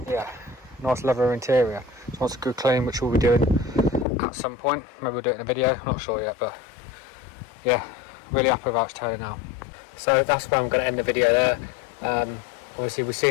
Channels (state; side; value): drops out; right; at 4.0 s